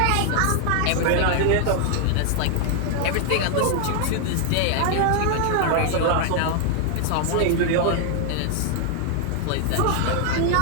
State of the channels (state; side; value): different; both; correlation 0.00